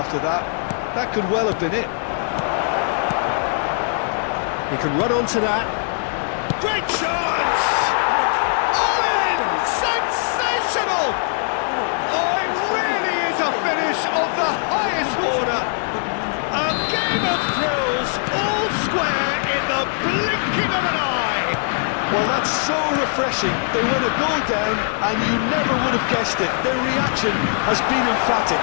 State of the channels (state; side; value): silent; right; digital silence